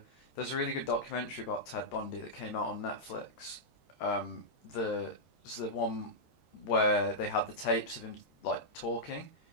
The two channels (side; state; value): right; late; 13 ms